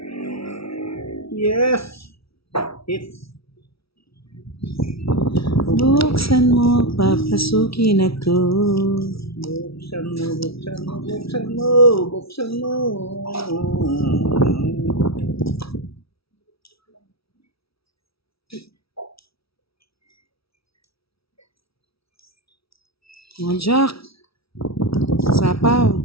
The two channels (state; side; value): late; right; 0.76 ms